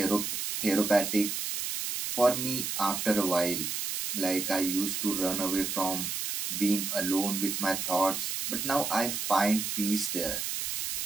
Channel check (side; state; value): right; noise; hiss, 2 dB below the sound